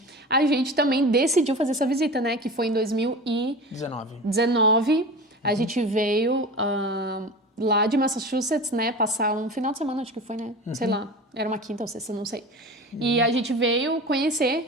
a gente também decidiu fazer essa visita, né, que foi em 2019, a gente veio lá de Massachusetts, né, passar um final de semana, acho que foi, né, sei lá, era uma quinta ou sexta, não sei. E a gente veio conhecer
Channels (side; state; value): both; normal; correlation 0.33